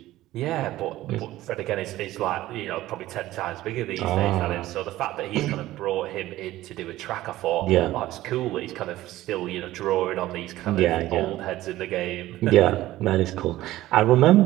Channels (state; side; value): quieter; left; 15.8 dB